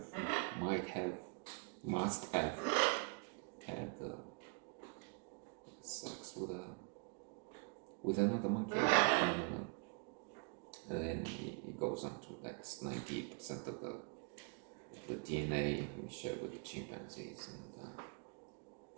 might have, must have had sex with another monkey. And then he goes on to that's 98% of the DNA we share with the chimpanzees, and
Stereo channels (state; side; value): quieter; left; 37.0 dB